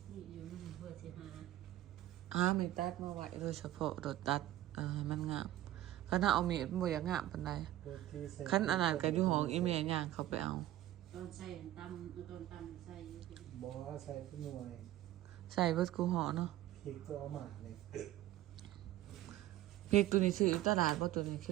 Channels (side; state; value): left; quieter; 14.1 dB